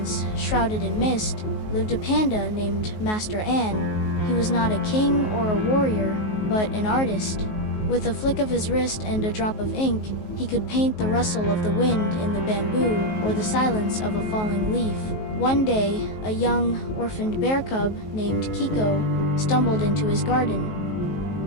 shrouded in mist, lived a panda named Master An. He was not a king or a warrior, but an artist. With a flick of his wrist and a drop of ink, he could paint the rustle of the wind in the bamboo or the silence of a falling leaf. One day, a young, orphaned bear cub named Kiko stumbled into his garden.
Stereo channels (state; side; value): late; right; 19 ms